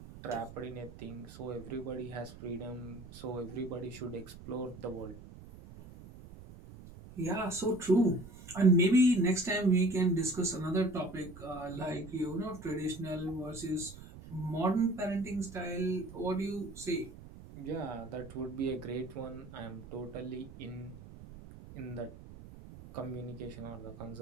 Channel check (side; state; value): right; noise; rumble, 16 dB below the sound